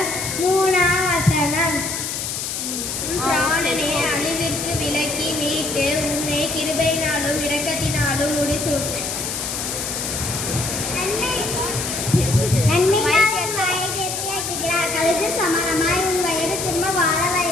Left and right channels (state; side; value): noise; left; hiss, 4 dB below the sound